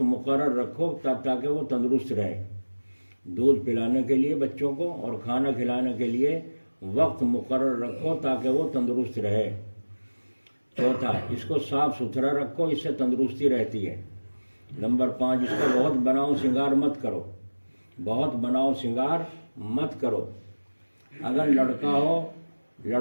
مقرر رکھو تاکہ وہ تندرست رہے۔ دودھ پلانے کے لیے بچوں کو اور کھانا کھلانے کے لیے وقت مقرر رکھو تاکہ وہ تندرست رہے۔ چوتھا، اس کو صاف ستھرا رکھو، اس سے تندرستی رہتی ہے۔ نمبر 5، اس کا بہت بناؤ سنگار مت کرو، بہت بناؤ سنگار مت کرو۔ اگر لڑکا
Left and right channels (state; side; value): inverted; both; correlation -1.00